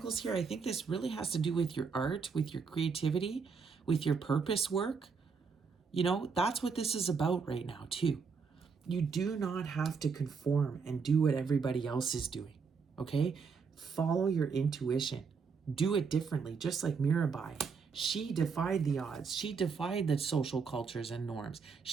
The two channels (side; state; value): left; quieter; 5.4 dB